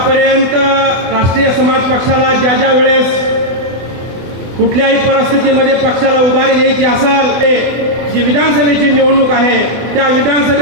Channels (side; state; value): left; late; 24 ms